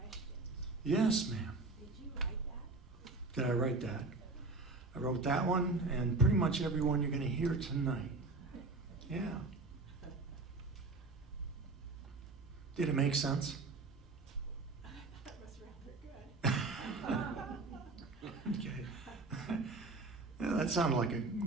Yes, ma'am. Did you write that? Did I write that? I wrote that one and pretty much every one you're going to hear tonight. Yeah. Did it make sense? That was rather good. Okay. Yeah, that sounded like a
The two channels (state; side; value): quieter; left; 3.5 dB